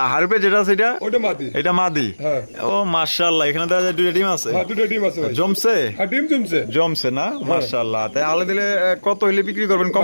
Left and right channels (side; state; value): both; inverted; correlation -1.00